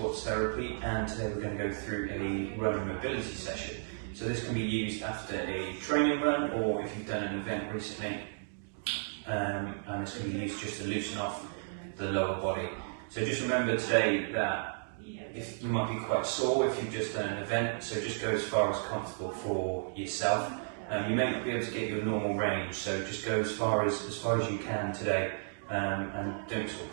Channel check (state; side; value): silent; left; digital silence